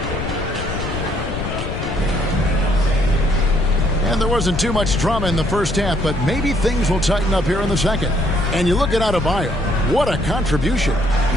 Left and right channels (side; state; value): left; noise; rumble, 6 dB below the sound